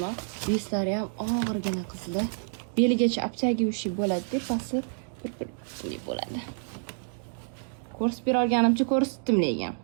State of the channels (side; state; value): left; silent; digital silence